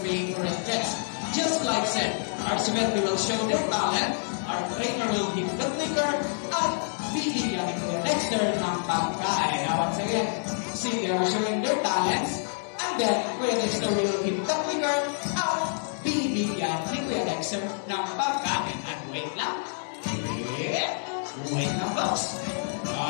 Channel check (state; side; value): silent; right; digital silence